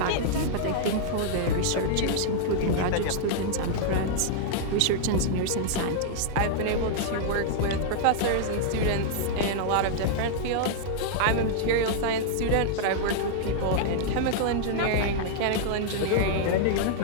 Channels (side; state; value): both; different; correlation -0.01